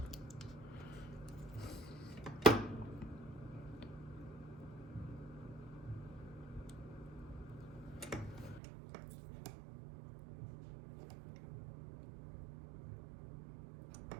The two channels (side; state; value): left; drops out; at 8.6 s